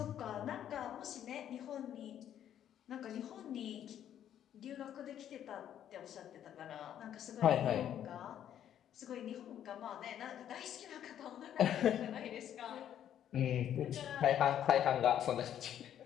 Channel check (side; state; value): right; quieter; 10.3 dB